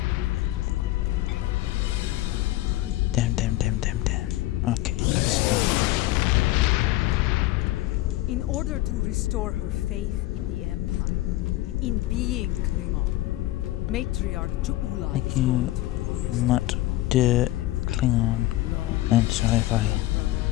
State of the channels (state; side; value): quieter; right; 16.7 dB